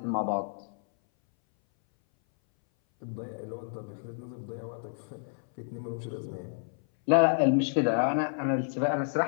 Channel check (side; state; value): right; silent; 58 dB below the other